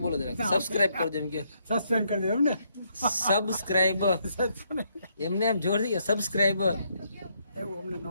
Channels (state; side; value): inverted; both; correlation -0.74